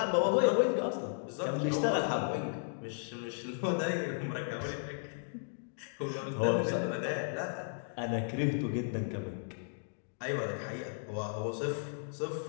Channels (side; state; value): right; silent; digital silence